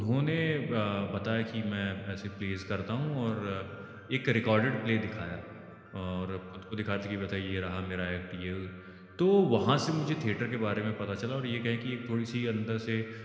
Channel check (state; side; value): identical; both; correlation 1.00